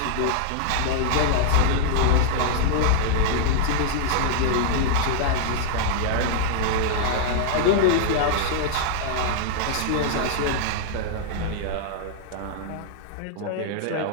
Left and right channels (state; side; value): different; both; correlation -0.01